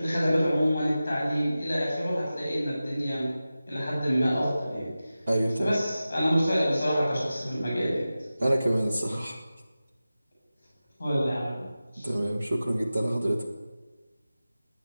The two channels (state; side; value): inverted; both; correlation -0.95